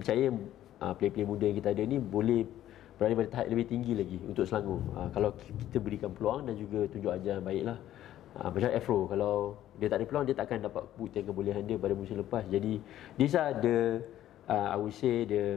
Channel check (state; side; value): quieter; right; 12.6 dB